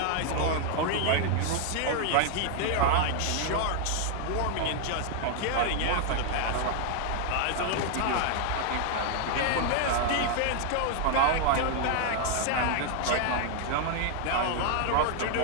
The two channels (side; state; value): both; different; correlation 0.00